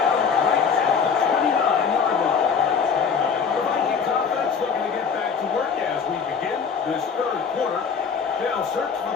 right at the 29-yard line. The Vikings offense looking to get back to work as we begin this 3rd quarter. They'll search for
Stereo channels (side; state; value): right; quieter; 6.1 dB